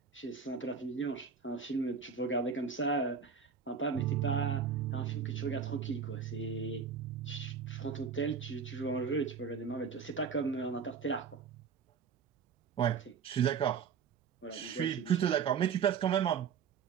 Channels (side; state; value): left; quieter; 6.4 dB